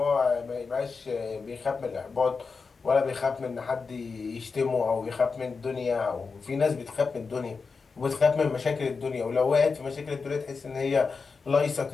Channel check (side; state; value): right; quieter; 4.8 dB